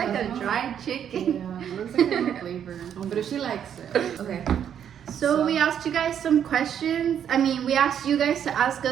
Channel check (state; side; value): quieter; left; 9.0 dB